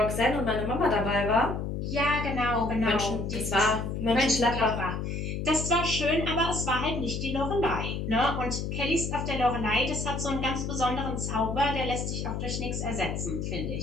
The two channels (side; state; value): left; noise; hum, 3 dB below the sound